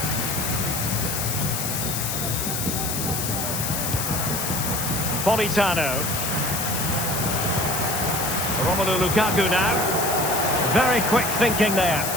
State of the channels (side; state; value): left; noise; hiss, 2 dB below the sound